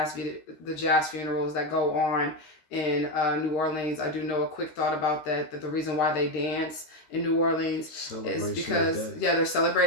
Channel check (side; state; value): right; late; 13 ms